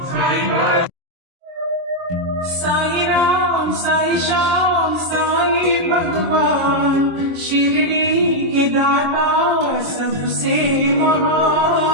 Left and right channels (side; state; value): left; late; 22 ms